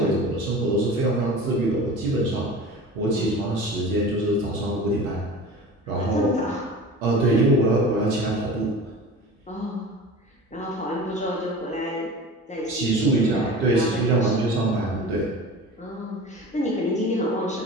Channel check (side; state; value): both; normal; correlation 0.37